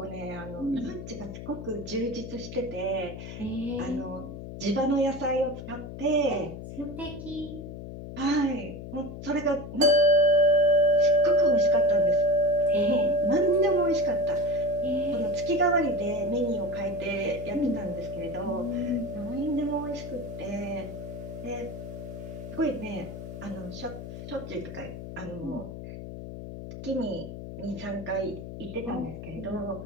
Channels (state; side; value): noise; left; hum, 10 dB below the sound